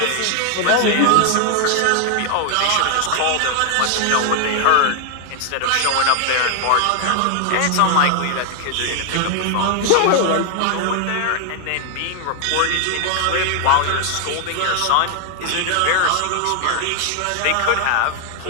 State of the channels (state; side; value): different; both; correlation 0.00